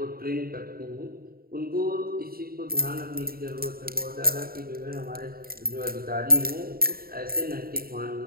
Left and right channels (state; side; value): late; left; 0.43 ms